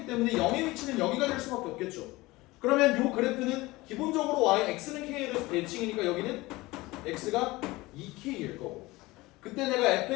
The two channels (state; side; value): quieter; right; 20.6 dB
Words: 때문에 0의 위치는 여기가 될 수밖에 없겠죠. 그러면 요 그래프는 기본적으로 y, x는 k에 대해서 대칭이니까 여기는 x가 2k일 거고 그때 내가